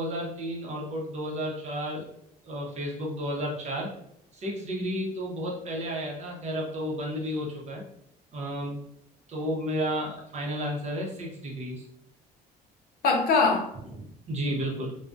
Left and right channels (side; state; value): both; normal; correlation 0.33